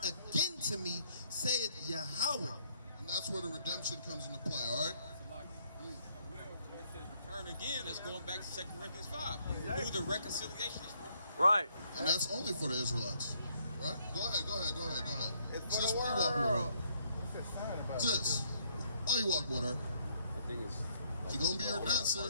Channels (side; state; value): both; inverted; correlation -0.67